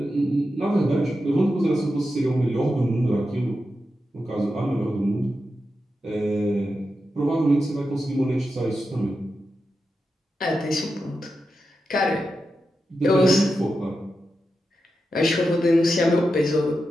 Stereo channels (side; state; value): both; normal; correlation 0.89